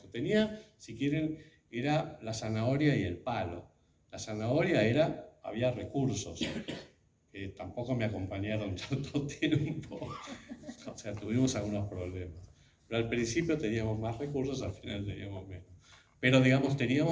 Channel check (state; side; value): identical; both; correlation 1.00